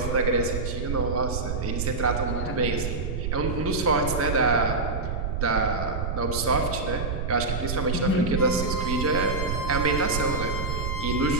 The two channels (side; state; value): right; noise; rumble, 2 dB below the sound